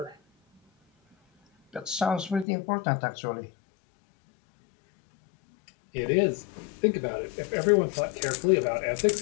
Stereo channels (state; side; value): drops out; right; at 2.5 s